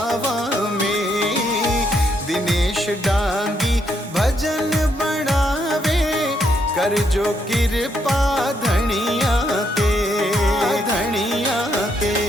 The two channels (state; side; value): normal; both; correlation 0.75